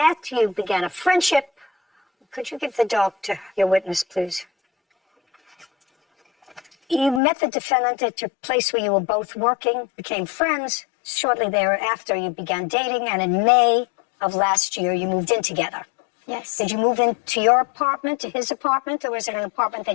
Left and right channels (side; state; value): right; drops out; at 7.2 s